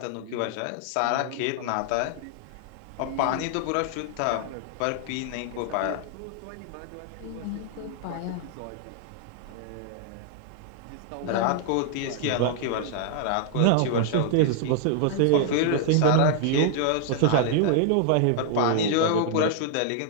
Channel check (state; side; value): different; both; correlation -0.01